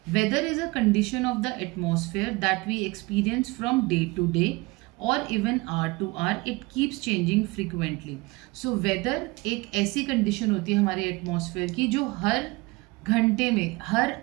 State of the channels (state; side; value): quieter; left; 23.6 dB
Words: Weather is a condition of the atmosphere that we experience from day to day और even hour to hour it keeps changing frequently. So weather एक ऐसी condition होती है हमारे atmosphere की जो हर घंटे में हर